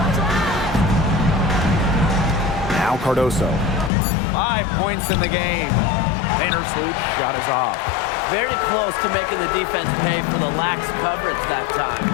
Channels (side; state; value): right; drops out; at 3.9 s